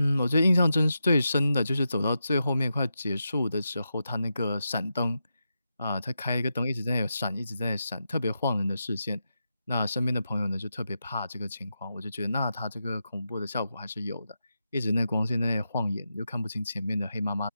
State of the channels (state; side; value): inverted; both; correlation -0.88